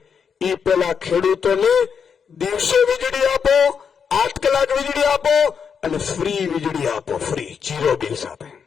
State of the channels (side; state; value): right; quieter; 6.7 dB